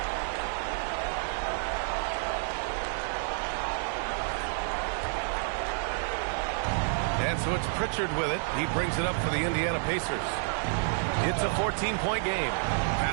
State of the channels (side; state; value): left; silent; digital silence